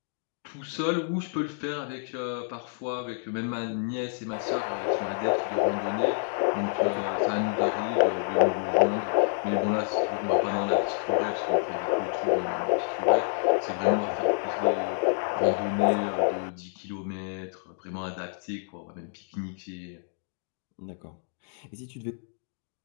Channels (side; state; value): right; silent; digital silence